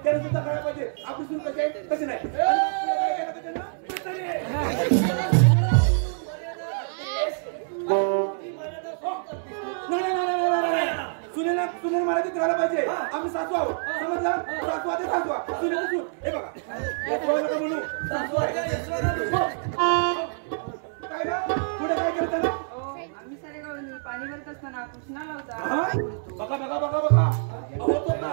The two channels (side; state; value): left; silent; 61 dB below the other